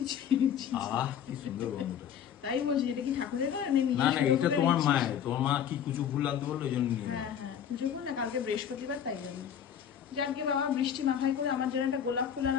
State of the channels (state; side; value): quieter; right; 8.8 dB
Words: ছি ছি। আহ কি সুন্দর গন্ধ। তাই বলছি, এটা কি ঠাকুরের না নিজে না না, এটা তোমার এনেছিস? মায়ের, তোমার মা কি কুচু ফুল লাগতে বললো ওই জন্য নিয়ে এলাম। হ্যাঁ হ্যাঁ, পুজো করুন না, কালকে বৃহস্পতিবার, তাই জন্য। যাকে বাবা, বৃষ্টি মাথায় করে আমার জন্য একটা গোলাপ ফুল